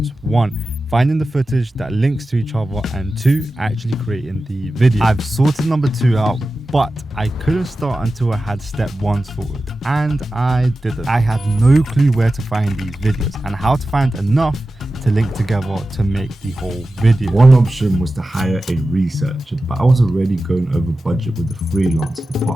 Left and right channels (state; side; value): normal; both; correlation 0.94